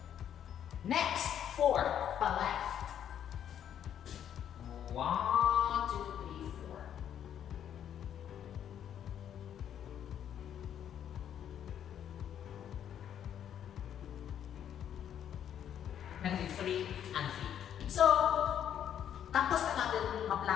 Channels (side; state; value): right; quieter; 9.6 dB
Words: Next, 4, pa left. 1, 2, 3, 4. Negative 3 and 3. So, tapos na natin